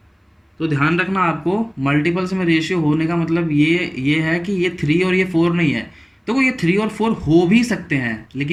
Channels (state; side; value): identical; both; correlation 1.00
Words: तो ध्यान रखना आपको, मल्टीपल्स में रेशियो होने का मतलब ये है कि ये 3 और ये 4 नहीं है। देखो ये 3 और 4 हो भी सकते हैं,